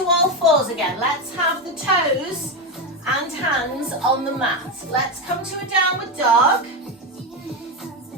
all fours again. Let's have the toes and hands on the mat. Let's come to a downward dog.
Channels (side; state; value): both; normal; correlation 0.12